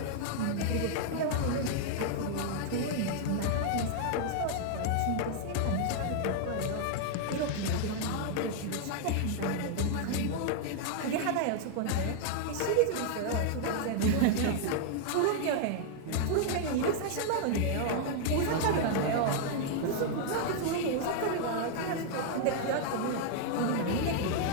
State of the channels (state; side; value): different; both; correlation 0.00